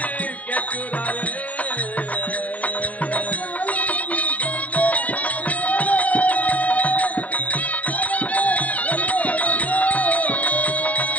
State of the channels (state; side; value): late; right; 0.068 ms